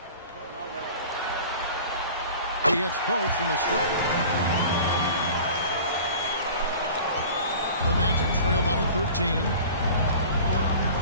He hits both from the stripe. The Magic trail by 13.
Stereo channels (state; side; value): inverted; both; correlation -0.41